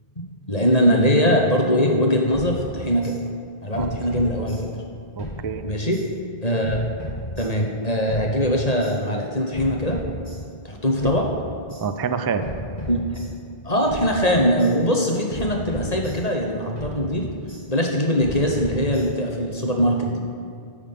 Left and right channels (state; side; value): late; right; 1.8 ms